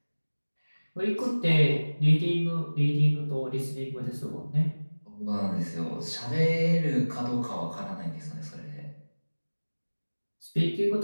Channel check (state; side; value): inverted; both; correlation -1.00